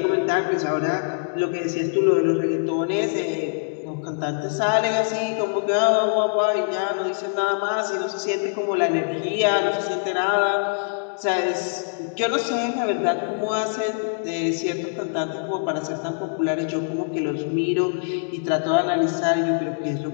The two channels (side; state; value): right; silent; digital silence